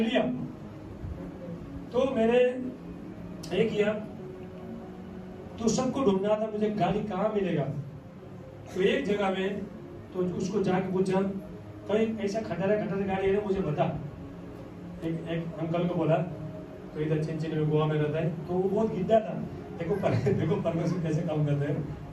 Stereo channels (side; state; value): both; identical; correlation 1.00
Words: तो मैंने ये किया, तो सबको ढूंढना था मुझे गाड़ी कहाँ मिलेगा। तो एक जगह में तो उसको जाके पूछा कहीं ऐसा खटारा गाड़ी है ना मुझे बता। एक अंकल को बोला तो इधर चिंचिनी में गोवा में रहता है। तो वो बहुत गिद्दा था। देखो देखो परमेश्वर कैसे काम करता है।